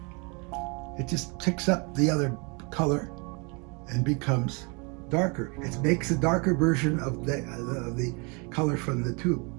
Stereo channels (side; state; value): left; quieter; 31.5 dB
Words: it just picks up the other color and becomes darker. It makes a darker version of the color from the tube.